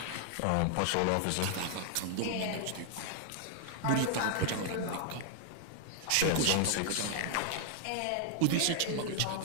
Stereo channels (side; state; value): both; different; correlation -0.01